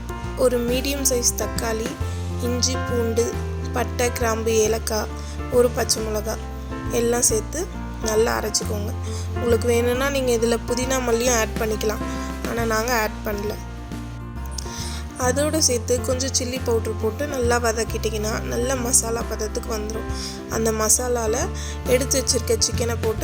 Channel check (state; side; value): identical; both; correlation 1.00